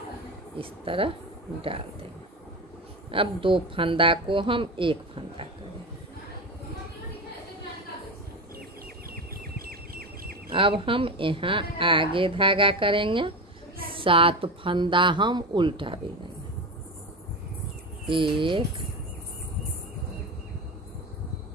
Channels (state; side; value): normal; both; correlation 0.22